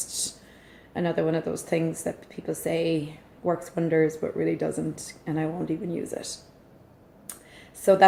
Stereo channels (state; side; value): identical; both; correlation 1.00